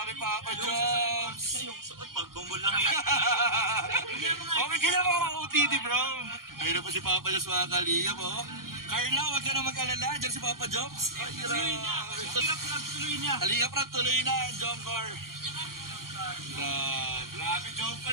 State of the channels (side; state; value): left; late; 0.92 ms